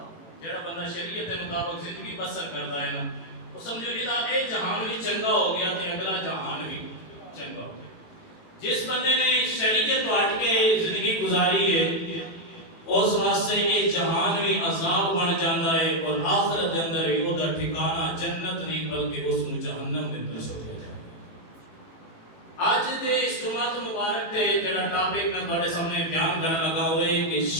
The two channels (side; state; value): right; late; 18 ms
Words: جڑا بندہ شریعت کے مطابق زندگی بسر کرتا ہے نا، وہ سمجھو جہاں اے جہان بھی چنگا ہو گیا تے اگلا جہان بھی چنگا ہو گیا۔ جس بندے نے شریعت تو ہٹ کے زندگی گزاری ہے اس واسطے یہ جہان بھی عذاب بن جاتا ہے اور آخرت دے اندر بھی وہ ٹھکانہ جنت نہیں بلکہ اس نو جہنم دے اندر سوچا جائے۔ آج دے اس جمعہ مبارک تے جڑا ٹاپک میں تواڈے سامنے بیان کرنا لگا ہوئے کہ